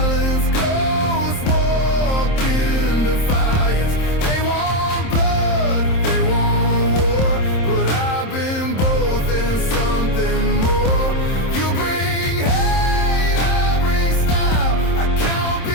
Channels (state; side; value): late; right; 27 ms